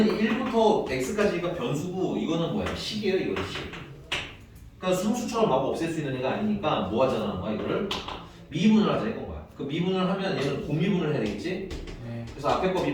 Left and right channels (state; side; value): identical; both; correlation 1.00